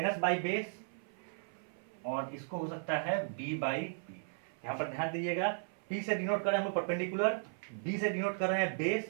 by base, और इसको हो सकता है b बाई पी। यहाँ पर ध्यान दीजिएगा, p से डिनोट कर रहे हैं हम लोग परपेंडिकुलर, b से डिनोट कर रहे हैं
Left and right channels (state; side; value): silent; left; 54 dB below the other